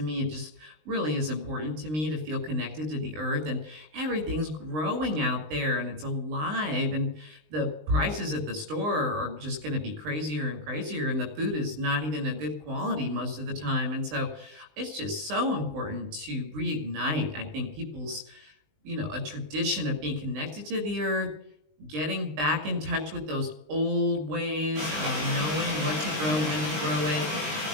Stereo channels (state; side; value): late; left; 20 ms